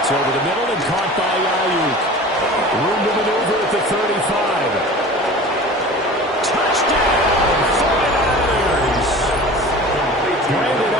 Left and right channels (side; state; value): both; normal; correlation 0.39